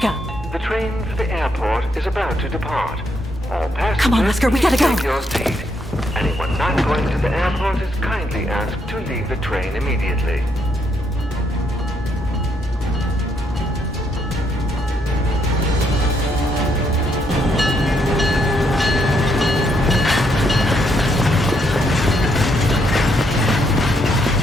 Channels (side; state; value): both; normal; correlation 0.75